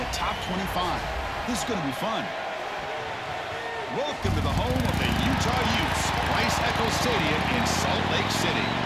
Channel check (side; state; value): both; identical; correlation 1.00